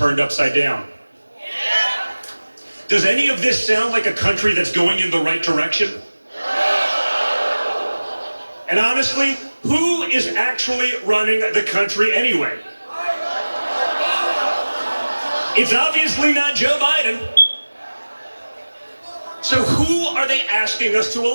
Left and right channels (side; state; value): both; inverted; correlation -1.00